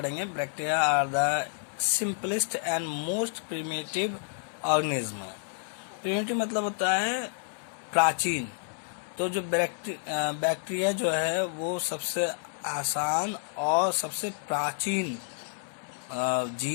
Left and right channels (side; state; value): right; silent; 56 dB below the other